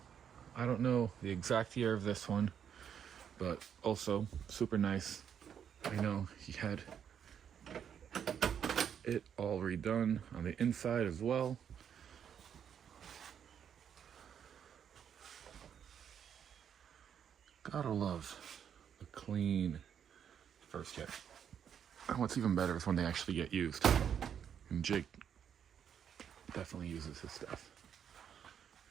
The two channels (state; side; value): quieter; left; 8.3 dB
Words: I don't know the exact year of this one, but also super nice. I know he had it all redone on the inside as well. Gotta love the clean first jet. And what's even better is when they actually get used. And Jake definitely uses his stuff.